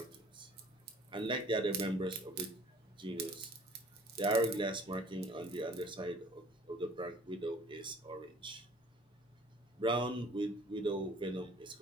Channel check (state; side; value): normal; both; correlation 0.52